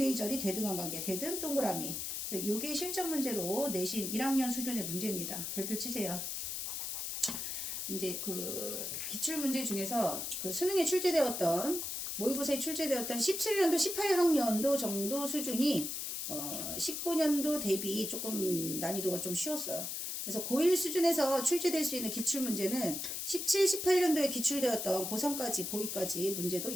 절이 대등한 관계. 대등 동그라미. 그래서 요게 실전 문제로 내신 1학년 수준의 문제입니다. 별표 치세요. 이제 그 기출 문제 중에서 그 수능에 출제되었던 모의고사에 출제되었던 17년도 18학년도 정도 수준이 19년도 대비 조금 난이도가 좀 쉬웠어요. 그래서 고1 수준에서 출제될 수 있는 기출 문제는 17, 18년도에 기출되었던 고3까지 고2까지 문제도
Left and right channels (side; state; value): left; noise; hiss, 4 dB below the sound